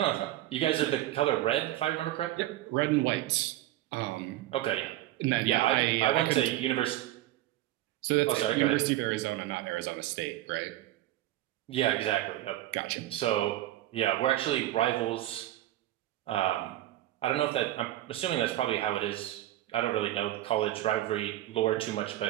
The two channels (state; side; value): quieter; left; 15.0 dB